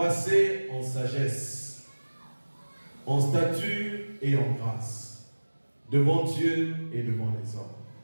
en sagesse, en stature et en grâce, devant Dieu et devant les hommes.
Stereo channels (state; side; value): inverted; both; correlation -1.00